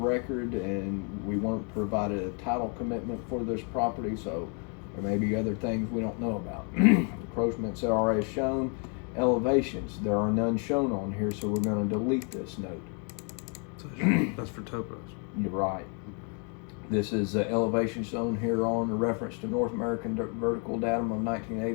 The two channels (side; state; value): right; quieter; 38.2 dB